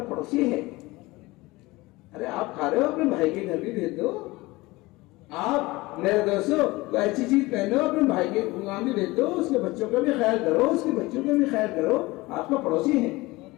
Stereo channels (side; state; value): right; quieter; 21.2 dB